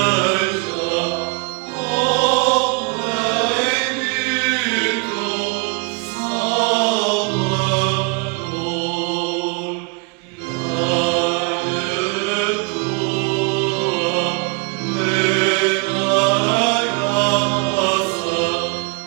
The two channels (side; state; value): left; quieter; 31.7 dB